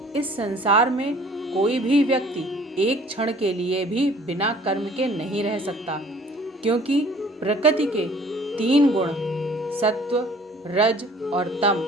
इस संसार में कोई भी व्यक्ति एक क्षण के लिए भी बिना कर्म के नहीं रह सकता, क्योंकि प्रकृति के 3 गुण सत्व, रज और तम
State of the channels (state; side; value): normal; both; correlation 0.53